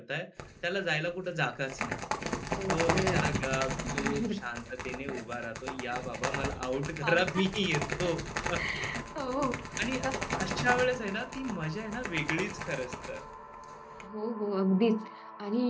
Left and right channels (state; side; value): identical; both; correlation 1.00